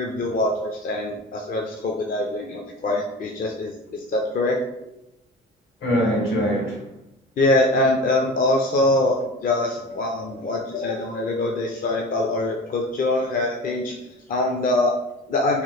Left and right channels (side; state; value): both; normal; correlation 0.34